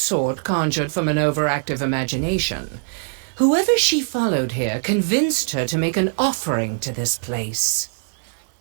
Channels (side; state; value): left; silent; 64 dB below the other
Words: conjured from an overactive imagination. Whoever she followed here convinced her to make an offering to this place.